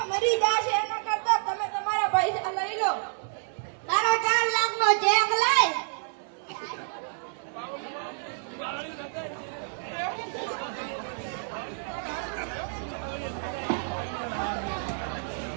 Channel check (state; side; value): silent; left; digital silence